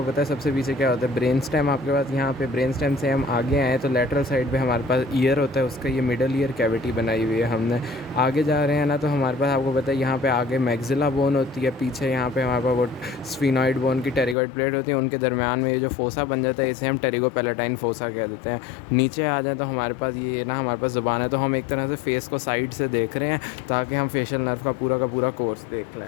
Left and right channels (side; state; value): right; drops out; at 14.4 s